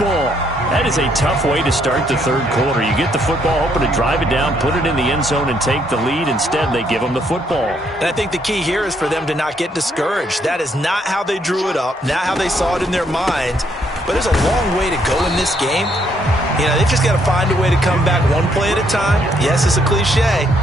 That is a tough way to start the third quarter. You get the football, hoping to drive it down, put it in the end zone, and take the lead. Instead, they give them the football. And I think the key here is for them to not get discouraged. That is not how they drew it up, not how they saw it in their mind. But there's a long way to go in this game. You know, they've just got to find a way to come back one play at a time. Yes, it's a cliche,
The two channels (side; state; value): both; normal; correlation 0.71